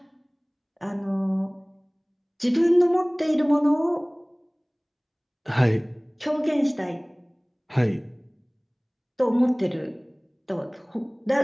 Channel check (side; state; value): both; identical; correlation 1.00